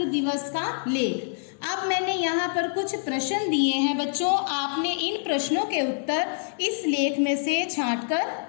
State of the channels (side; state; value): right; silent; 61 dB below the other